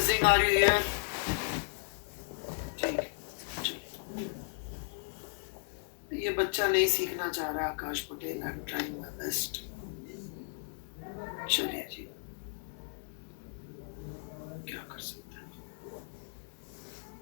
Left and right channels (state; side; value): silent; right; digital silence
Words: are you here? ठीक है. ये बच्चा नहीं सीखना चाह रहा Akash Patel, I am trying my best. चलिए जी, क्या कर सकते हैं.